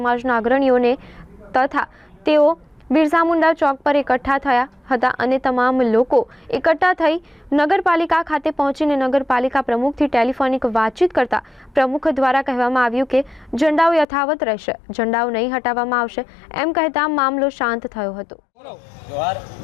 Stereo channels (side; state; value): right; drops out; at 14.1 s